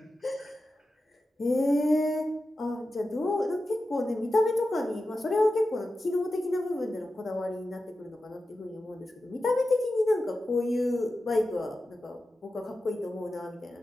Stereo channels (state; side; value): normal; both; correlation 0.92